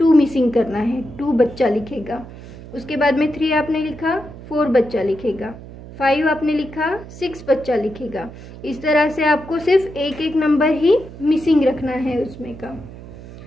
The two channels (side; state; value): right; noise; hum, 15 dB below the sound